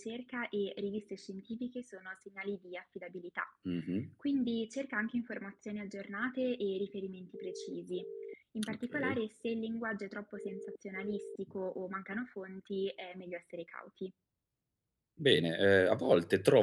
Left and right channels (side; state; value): both; identical; correlation 1.00